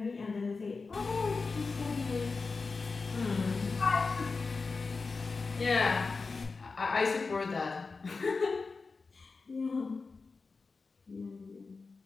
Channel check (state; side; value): quieter; right; 4.3 dB